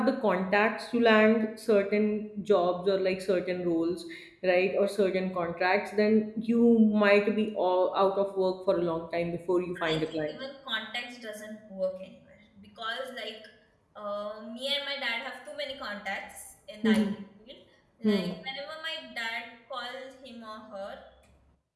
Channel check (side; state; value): both; identical; correlation 1.00